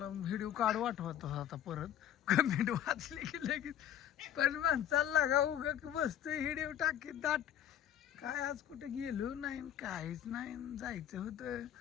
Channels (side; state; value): right; quieter; 10.7 dB